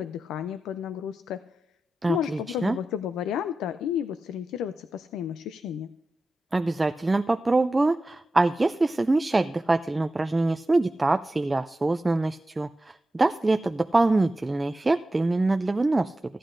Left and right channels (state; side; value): normal; both; correlation 0.93